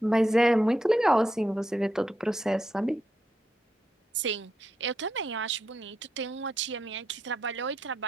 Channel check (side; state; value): both; normal; correlation 0.82